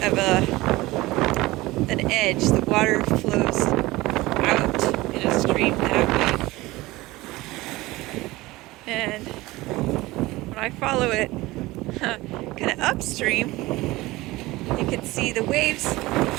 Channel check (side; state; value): left; quieter; 19.6 dB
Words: an edge. The water flows out in a stream that way. And when I follow it kind of upstream, you can see the waves